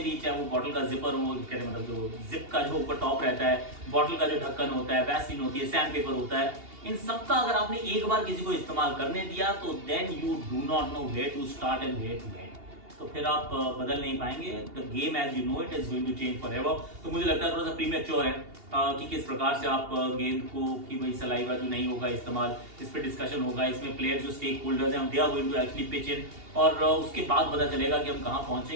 भी, चाहे वो बॉटल का जिपर हो, कहते मतलब जो जिप का जो ऊपर टॉप रहता है, बॉटल का जो ढक्कन होता है, वैसलीन होती है, सैंड पेपर होता है, इन सब का अगर आपने एक बार किसी को इस्तेमाल करने दिया तो then you do not know where to start and where to end. तो फिर आप बदल नहीं पाएंगे। The game as you know it is going to change forever. तो मुझे लगता है थोड़ा सा प्रीमेच्योर है कि किस प्रकार से आप गेंद को, कि भाई सलाइवा जो नहीं होगा इस्तेमाल, इस पर डिस्कशन होगा, इसमें प्लेयर जो स्टेक होल्डर्स हैं they are going to actually pitch in, और उसके बाद पता चलेगा कि हम कहाँ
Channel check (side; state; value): left; late; 2.8 ms